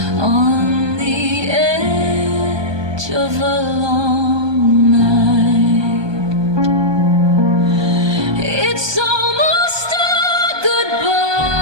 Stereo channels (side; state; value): left; late; 1.2 ms